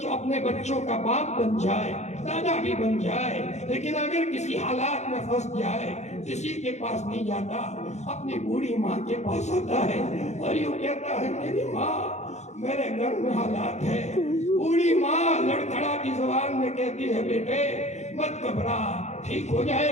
اپنے بچوں کا باپ بن جائے، دادا بھی بن جائے، لیکن اگر کسی حالات میں پھنس جائے، کسی کے پاس نہیں جاتا، اپنی بوڑھی ماں کے پاس آتا ہے اور یوں کہتا ہے میری ماں میرے گھر میں حالات ہے۔ بوڑھی ماں لڑکھڑاتی زبان میں کہتی ہے بیٹے مت گھبرا، ٹھیک ہو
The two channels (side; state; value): right; late; 0.33 ms